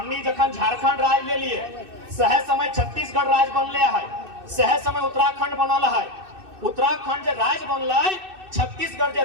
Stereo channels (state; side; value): late; left; 2.6 ms